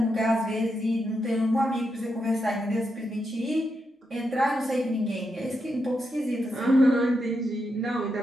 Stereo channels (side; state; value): both; normal; correlation 0.84